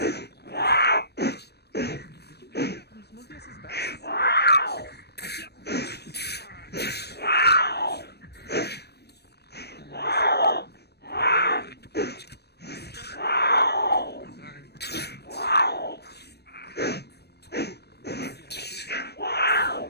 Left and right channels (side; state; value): right; late; 0.47 ms